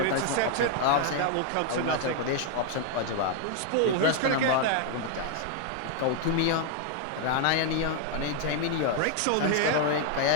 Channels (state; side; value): different; both; correlation 0.00